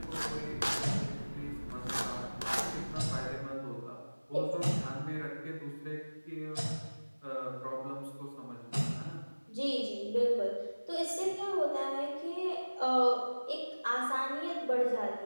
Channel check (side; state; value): both; inverted; correlation -1.00